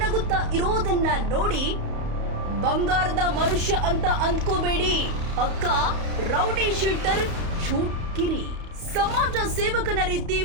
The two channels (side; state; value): left; late; 31 ms